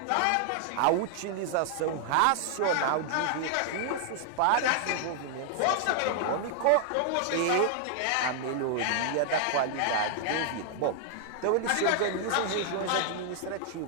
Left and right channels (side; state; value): both; different; correlation 0.00